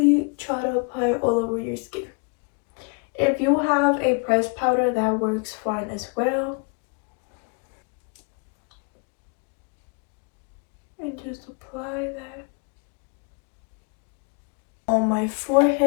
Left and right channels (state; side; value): quieter; right; 34.9 dB